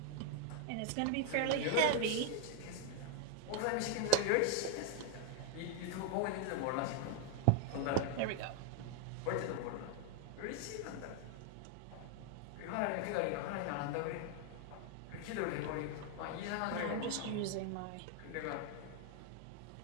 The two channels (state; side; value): different; both; correlation 0.01